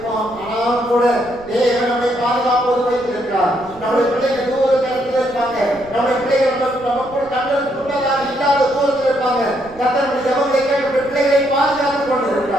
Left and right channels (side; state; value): right; noise; rumble, 22 dB below the sound